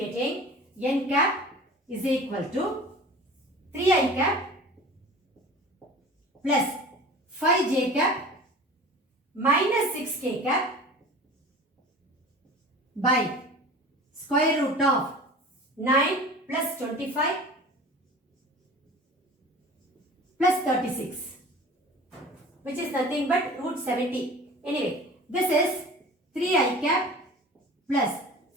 n cap is equal to 3i cap plus 5j cap minus 6k cap by square root of 9 plus 25 plus 36, which is nothing but root 70. Anyway, this is 3i cap plus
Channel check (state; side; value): normal; both; correlation 0.40